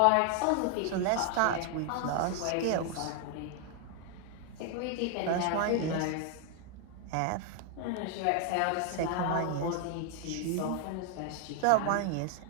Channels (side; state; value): both; different; correlation 0.00